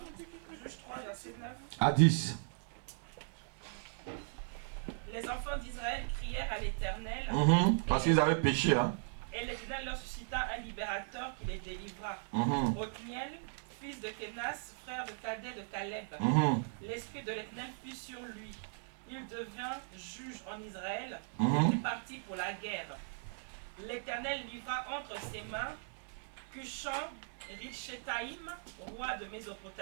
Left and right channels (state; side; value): silent; left; digital silence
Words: 3, verset 9. À 10. Les enfants d'Israël crièrent à l'Éternel, Parce qu'ils avaient péché. Hein. et l'Éternel leur suscita un libérateur qui les délivra. Othniel, fils de Kénas, frère de Cadet de Caleb. L'esprit de l'Éternel fut sur lui. Il devint juge en Israël, et partit pour la guerre. L'Éternel livra entre ses mains Cushan Richetaïm, roi de